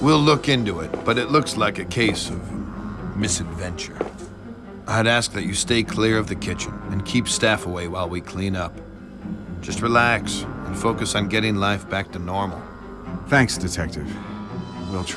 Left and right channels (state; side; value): identical; both; correlation 1.00